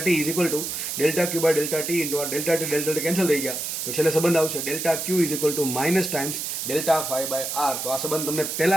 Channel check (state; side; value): noise; right; hiss, 4 dB below the sound